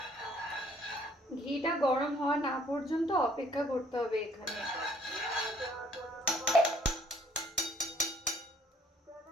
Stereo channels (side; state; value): both; normal; correlation 0.61